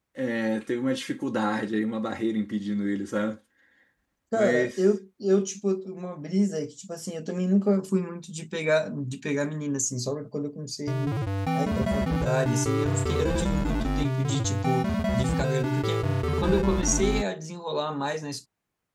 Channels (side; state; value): both; identical; correlation 1.00